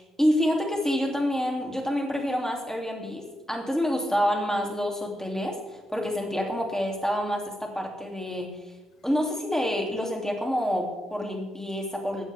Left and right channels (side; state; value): both; normal; correlation 0.85